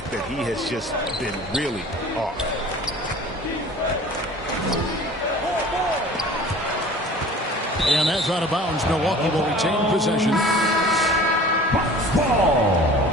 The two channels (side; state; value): both; normal; correlation 0.44